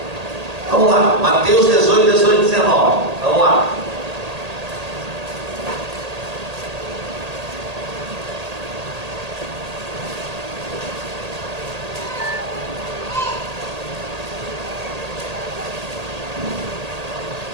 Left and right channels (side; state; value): left; late; 1.8 ms